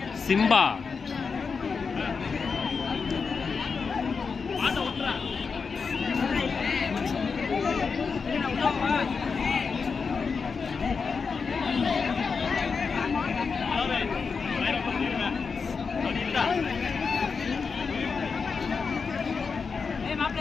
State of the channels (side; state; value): right; quieter; 5.2 dB